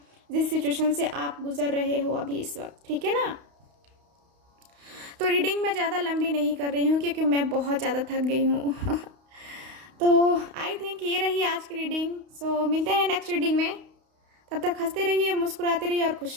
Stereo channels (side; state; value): left; late; 32 ms